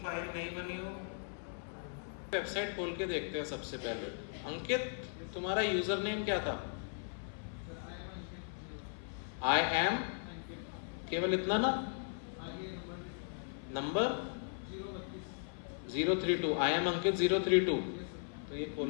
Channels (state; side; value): silent; right; 53 dB below the other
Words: फाइल नहीं बनी हो, वेबसाइट खोल के देखते हैं सबसे पहले। अंकित, तुम्हारा यूजर नेम क्या था? आई एम, केवल इतना ना, नंबर 032। आई एम अंकित 032। तो ये